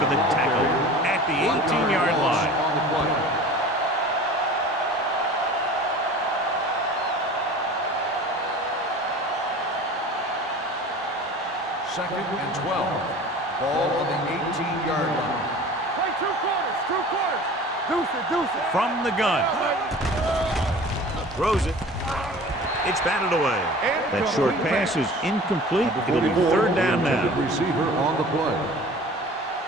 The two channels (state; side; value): normal; both; correlation 0.41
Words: the tackle at the 18-yard line. On the play. Second and 12. Ball on the 18-yard line. Play 2 quarters, 2 quarters. Deuce it, deuce it. From the gun. Throws it. It's batted away. That short pass is incomplete. It'll be third down now. Receiver on the play.